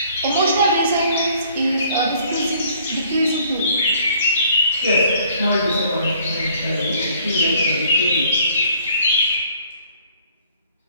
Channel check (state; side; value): inverted; both; correlation -0.59